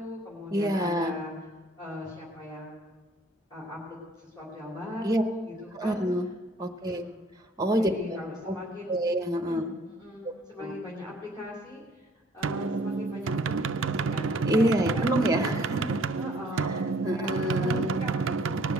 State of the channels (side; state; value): both; normal; correlation 0.59